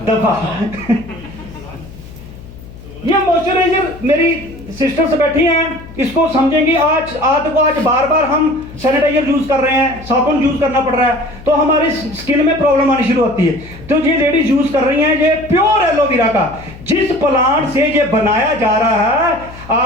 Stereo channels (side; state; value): left; noise; hum, 17 dB below the sound